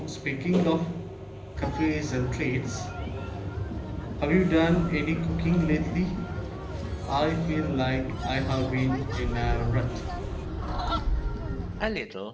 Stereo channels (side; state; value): both; identical; correlation 1.00